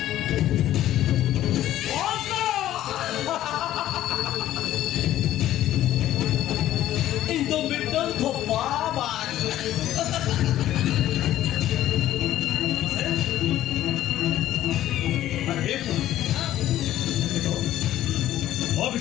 인도밀도 더 봐봐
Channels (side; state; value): right; quieter; 13.2 dB